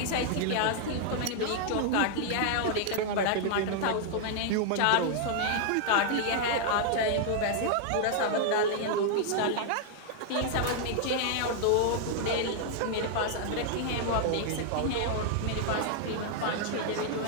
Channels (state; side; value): different; both; correlation -0.01